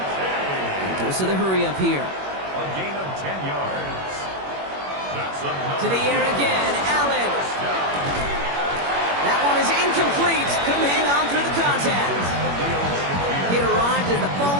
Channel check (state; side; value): late; left; 21 ms